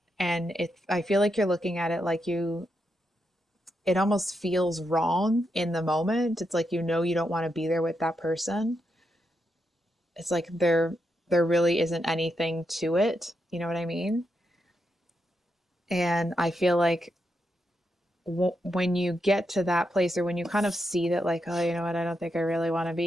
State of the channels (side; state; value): both; normal; correlation 0.84